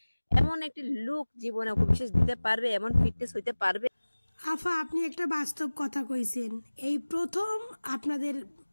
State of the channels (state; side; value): inverted; both; correlation -1.00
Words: এমন একটি লুক জীবনে অপবিশ্বাস দিতে পারবে? এমন ফিটনেস হইতে পারবে? আফা, আপনি একটা বাস্তব কথা কইছেন। এই প্রথম আপনাদের